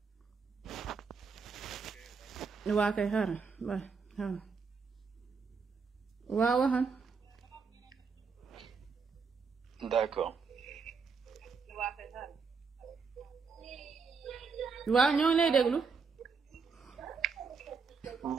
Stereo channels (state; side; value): quieter; left; 5.2 dB